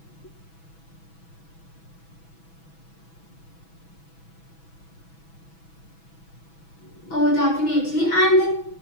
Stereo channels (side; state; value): right; late; 6.1 ms